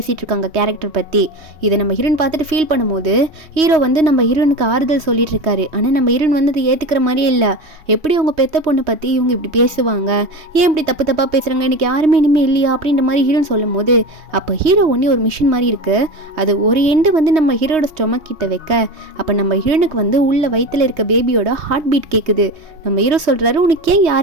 இருக்காங்க கேரக்டர் பற்றி. இதை நம்ம ஹீரோயின் பார்த்துட்டு ஃபீல் பண்ணும்போது ஹீரோ வந்து நம்ம ஹீரோனுக்கு ஆறுதல் சொல்லிட்டு இருக்காரு. ஆனால் நம்ம ஹீரோயின் வந்து அதை ஏற்றுக்கிற மாதிரியே இல்லை. எப்படி அவங்க பெத்த பொண்ணை பற்றி இவங்க இப்படி பேசுவாங்க, ஏன் இப்படி தப்பா பேசுகிறாங்க, எனக்கு யாருமே இனிமேல் இல்லையா அப்படின்ற மாதிரி ஹீரோயின் சொல்லும் போது அப்போ ஹீரோ ஒன்றே ஒரு மிஷின் மாதிரி இருக்குது. அது ஒரு எண்டு வந்து நம்ம ஹீரோட ஸ்டொமக் கிட்ட வைக்க அப்போ நம்ம ஹீரோனுக்கு வந்து உள்ள வயிற்றில் இருக்க பேபியோட ஹார்ட் பீட் கேட்குது. நம்ம ஹீரோ சொல்கிறாரு, உனக்கு ஏன்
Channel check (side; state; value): left; late; 3.1 ms